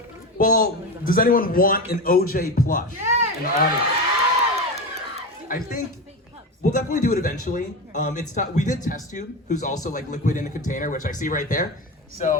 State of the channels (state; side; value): normal; both; correlation 0.22